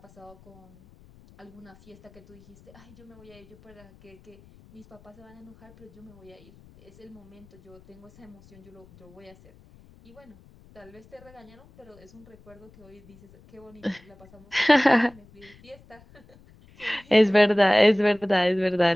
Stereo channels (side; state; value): left; noise; rumble, 25 dB below the sound